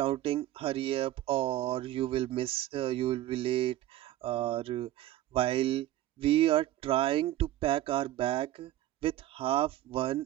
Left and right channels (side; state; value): left; quieter; 14.3 dB